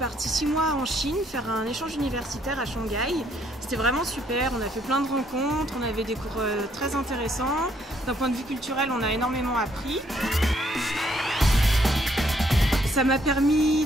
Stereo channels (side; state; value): both; normal; correlation 0.69